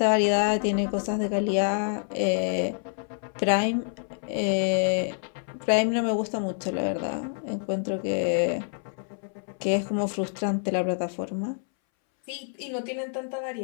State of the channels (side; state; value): right; silent; 60 dB below the other